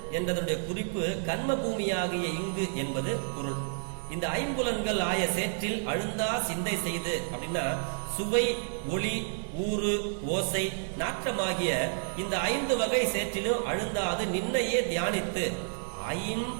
என்றதனுடைய குறிப்பு கர்ம பூமியாகிய இங்கு என்பது பொருள். இந்த 5 புலன்கள் ஆய சேற்றில் அழுந்தா சிந்தை செய்து அப்படின்னா சுவை ஒளி ஊறு ஓசை நாற்றமாகிய இந்த 5 வகை சேற்றிலும் அழுந்தாது நின்னையே தியானித்து 5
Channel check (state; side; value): silent; left; 58 dB below the other